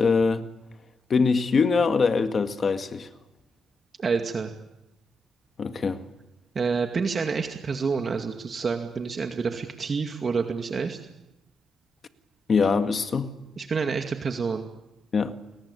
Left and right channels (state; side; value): normal; both; correlation 0.84